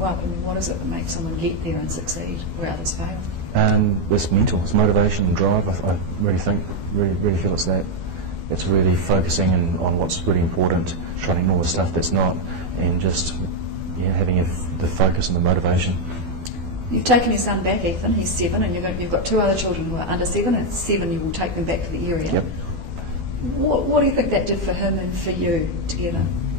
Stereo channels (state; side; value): late; left; 12 ms